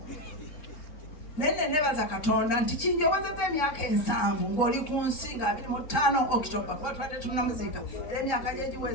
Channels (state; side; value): late; right; 3.7 ms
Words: nende nebaza Katonda nti kinjowezeza emyaka 7 ng'oli ku nsi nga 25 October kuba twadde tunamuziika era emyaka gye